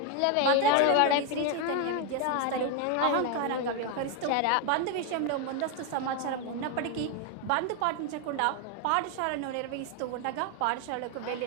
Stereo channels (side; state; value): both; different; correlation 0.01